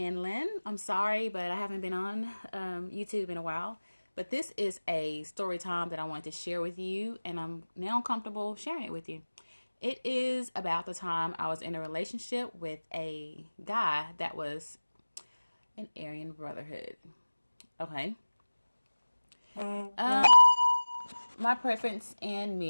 I'm sorry, but I haven't been on YouTube in a while. But this is a story time that I wanted to share with you, and I'm now comfortable sharing it with you. It is about the time I was in a relationship with a guy that was an Aryan Brotherhood. Okay. Um, my preference in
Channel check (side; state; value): both; inverted; correlation -1.00